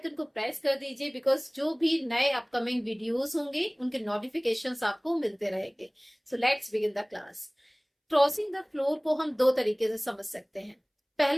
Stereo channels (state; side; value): identical; both; correlation 1.00